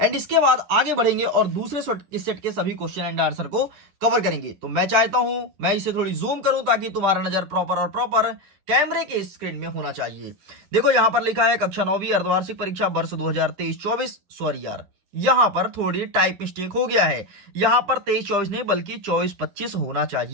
इसके बाद आगे बढ़ेंगे और दूसरे सेट के सभी क्वेश्चन एंड आंसर को कवर करेंगे। तो मैं चाहता हूं मैं इसे थोड़ी जूम करूं ताकि तुम्हारा नजर प्रॉपर कैमरे के स्क्रीन में होना चाहिए। देखो यहां पर लिखा है कक्षा 9वीं अर्धवार्षिक परीक्षा वर्ष 2023-24। सॉरी यार, यहां पर थोड़ी टाइप मिस्टेक हो गया है। यहां पर 23-24 नहीं बल्कि 24-25 होना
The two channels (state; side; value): late; left; 10 ms